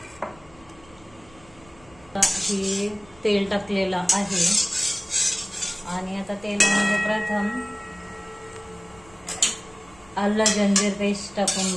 हे तेल टाकलेलं आहे आणि आता तेलामध्ये प्रथम आलं जंजीर पेस्ट टाकून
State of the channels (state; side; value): noise; right; rumble, 26 dB below the sound